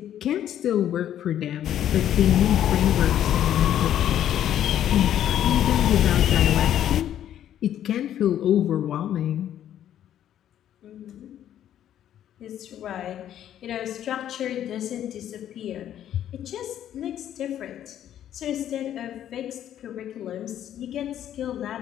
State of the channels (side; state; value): right; quieter; 10.9 dB